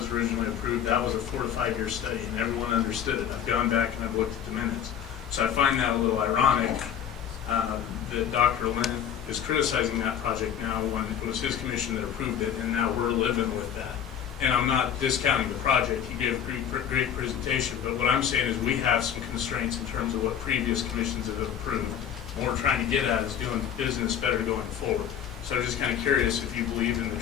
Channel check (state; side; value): quieter; right; 9.0 dB